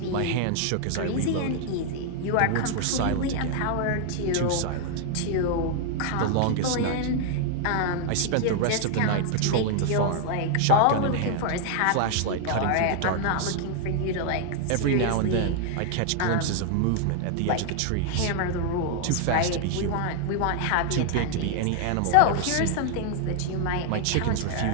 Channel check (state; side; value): different; both; correlation 0.00